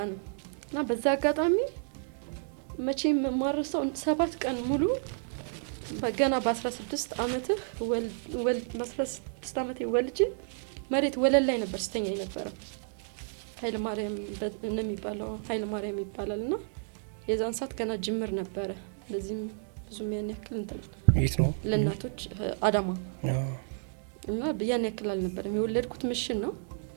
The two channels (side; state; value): left; silent; digital silence